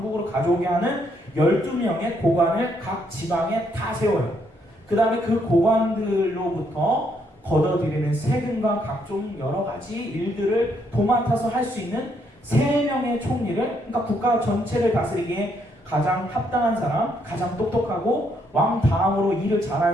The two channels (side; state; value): both; normal; correlation 0.73